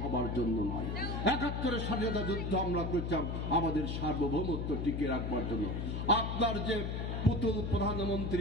হবার জন্য নয়। 71-এর স্বাধীনতা যুদ্ধ আমরা করছিলাম আমাদের সার্বভৌমত্ব টিকিয়ে রাখবার জন্য। আপনার যে পুতুল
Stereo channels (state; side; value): noise; left; hum, 2 dB below the sound